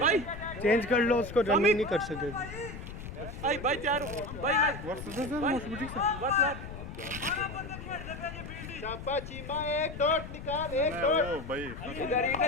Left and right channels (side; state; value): left; noise; rumble, 10 dB below the sound